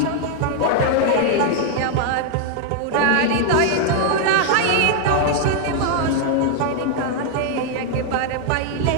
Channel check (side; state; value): both; different; correlation 0.00